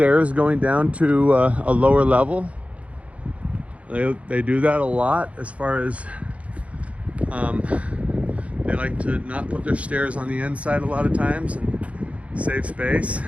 going down to a lower level. They do that a lot, as far as they like to not put their stairs on the inside a lot of times and save space.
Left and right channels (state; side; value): late; left; 0.065 ms